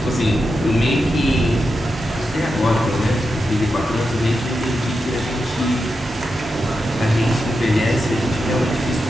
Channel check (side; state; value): both; normal; correlation 0.88